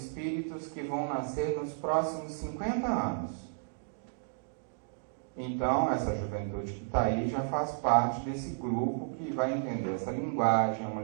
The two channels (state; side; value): silent; left; digital silence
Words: que vão nascer nos próximos 50 anos. Então, essa juventude que está aí já faz parte desse grupo que vai entender essa linguagem, é uma